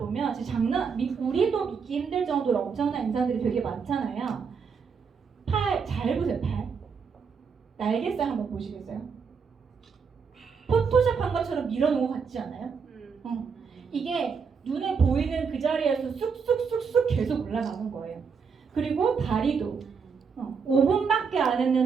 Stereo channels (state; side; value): quieter; left; 5.9 dB